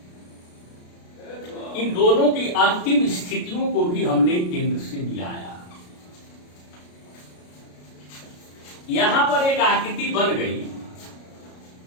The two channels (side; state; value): right; late; 33 ms